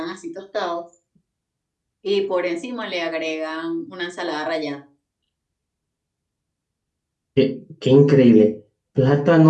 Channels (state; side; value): identical; both; correlation 1.00